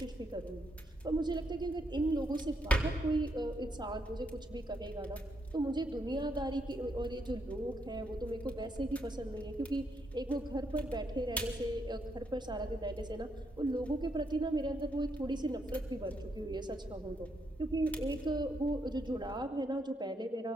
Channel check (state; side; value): normal; both; correlation 0.77